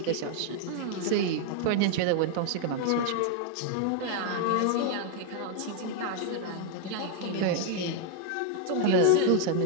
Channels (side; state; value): both; different; correlation 0.00